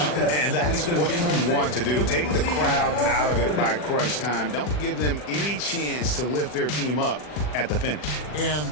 And that's what you want to do. Take the crowd out of it by crunch time. Don't give them any chance to lift their team up at the finish. And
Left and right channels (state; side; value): late; right; 40 ms